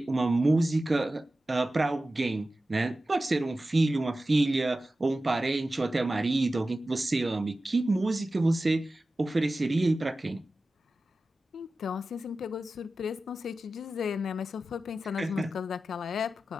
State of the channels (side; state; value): both; normal; correlation 0.94